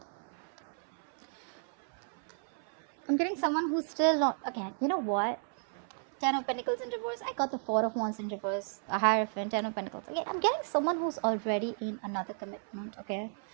I'm getting someone who's still not... Again, you know what? Ten of Pentacles in reverse. I got the Four of Wands in reverse. A Hierophant, Ten of Pentacles. Again, I'm getting someone who's already in another commitment, okay?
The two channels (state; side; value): silent; left; 55 dB below the other